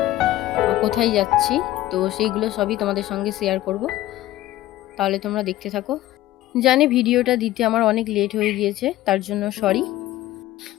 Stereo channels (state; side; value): quieter; right; 15.3 dB